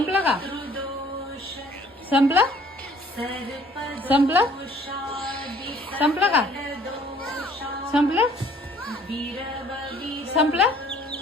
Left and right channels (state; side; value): normal; both; correlation 0.57